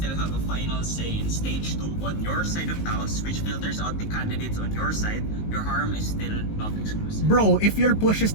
have a final say in stage 2 on your side of the house, which filters out the candidates on your side. Your harm is still not exclusive. Bro, if your push is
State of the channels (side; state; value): right; late; 19 ms